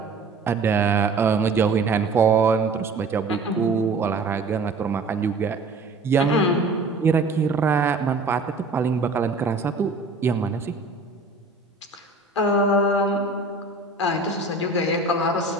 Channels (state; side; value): quieter; left; 3.5 dB